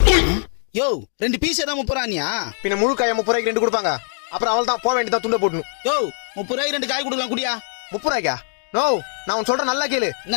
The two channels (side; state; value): right; silent; digital silence